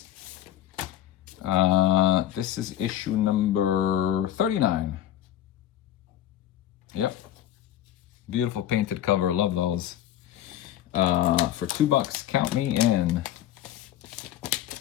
This is issue number 39. Yep. Beautiful painted cover. Love those. For $2. Count me in.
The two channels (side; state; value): right; quieter; 12.1 dB